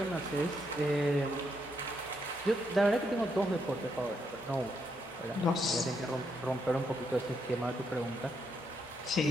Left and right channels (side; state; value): both; normal; correlation 0.78